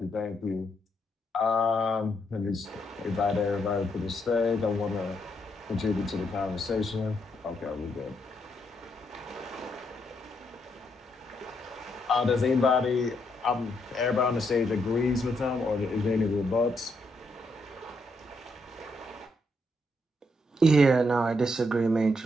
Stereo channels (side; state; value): both; normal; correlation 0.77